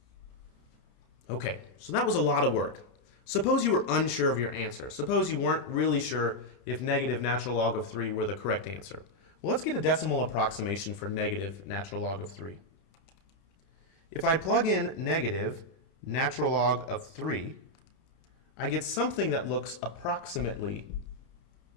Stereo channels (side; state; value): right; late; 30 ms